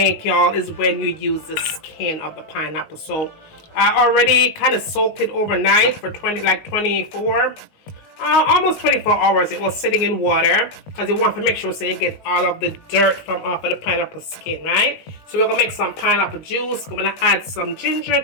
y'all, is when you use the skin of the pineapple. So I already kind of soaked it overnight for almost 24 hours. It was sitting in water because you want to make sure so you get all of the dirt from off of the pineapple skin, right? So we're gonna make some pineapple juice. We're gonna add some ginger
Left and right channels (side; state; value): right; late; 19 ms